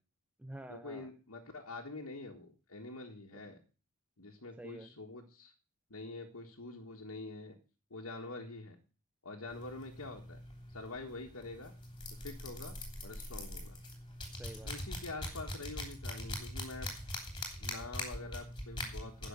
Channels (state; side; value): normal; both; correlation 0.27